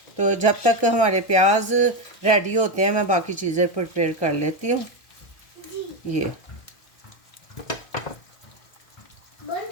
तो जब तक हमारे प्याज रेडी होते हैं मैं बाकी चीज़ें प्रिपेयर कर लेती हूँ। ये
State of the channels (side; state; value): right; late; 1.3 ms